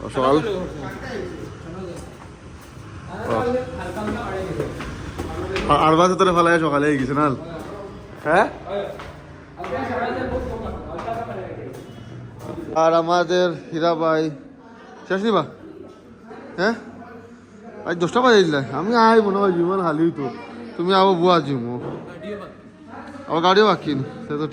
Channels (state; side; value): identical; both; correlation 1.00